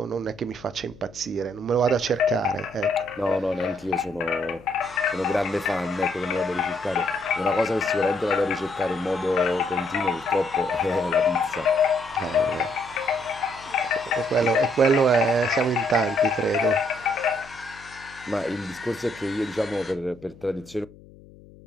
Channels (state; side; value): noise; left; hum, 22 dB below the sound